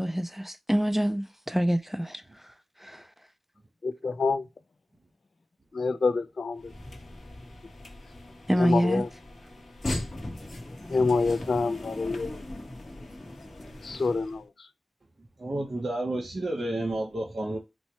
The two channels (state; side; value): normal; both; correlation 0.95